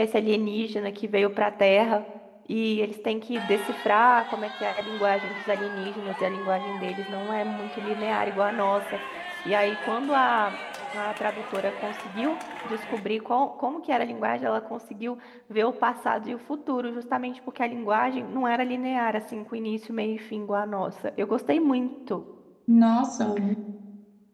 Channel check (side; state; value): both; identical; correlation 1.00